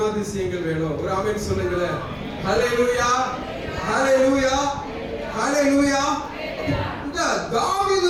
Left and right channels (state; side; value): identical; both; correlation 1.00